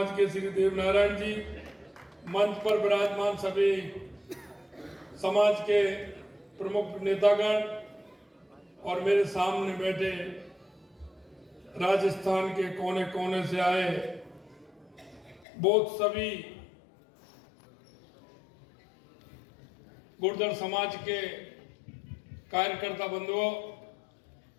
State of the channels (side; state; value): right; drops out; at 15.5 s